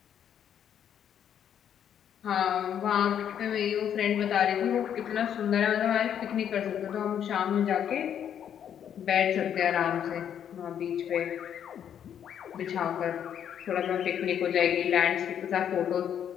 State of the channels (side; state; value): right; quieter; 9.1 dB